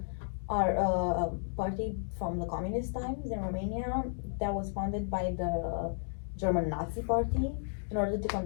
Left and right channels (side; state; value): right; silent; digital silence